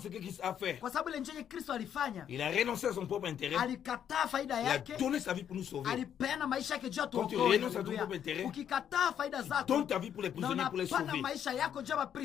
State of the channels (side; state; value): right; quieter; 9.2 dB